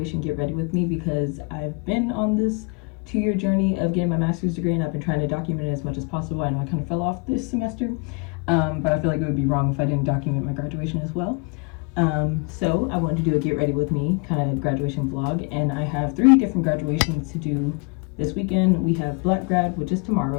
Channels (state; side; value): quieter; right; 30.7 dB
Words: get ready with me because I've been on this 2-year journey of getting my master's degree, and I've been trying to document it as much as possible. I know I kind of fell off this semester, but I feel like it would be wrong if I didn't document my graduation as well. So I wanted to do a get ready with me kind of graduation vlog, and I have 3 different graduations to do this weekend. We have Black Grad, which is